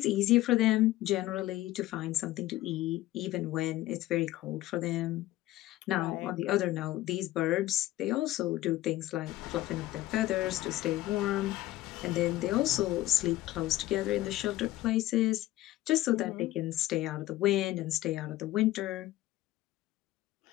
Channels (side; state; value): right; quieter; 16.0 dB